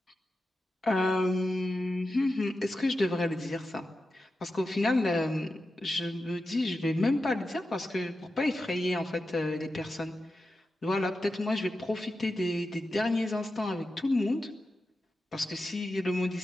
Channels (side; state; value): both; normal; correlation 0.91